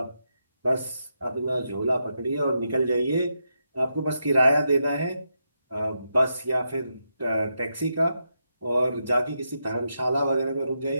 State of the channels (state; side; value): inverted; both; correlation -0.84